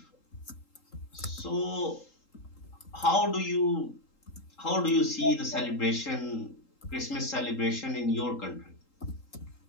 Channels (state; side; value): late; right; 3.8 ms